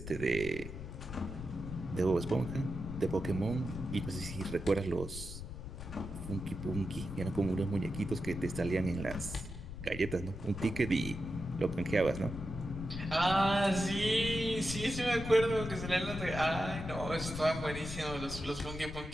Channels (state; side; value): noise; left; rumble, 9 dB below the sound